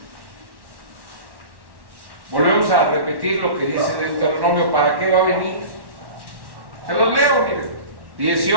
Volvemos a repetir lo que dice Deuteronomio, ¿para qué va a venir? Se los leo, miren.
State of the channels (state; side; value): late; left; 1.1 ms